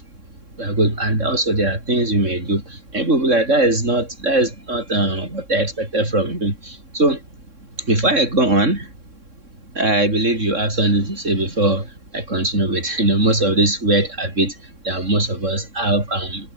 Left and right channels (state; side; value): late; left; 3.6 ms